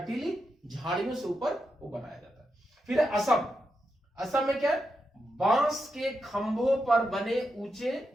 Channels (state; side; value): normal; both; correlation 0.86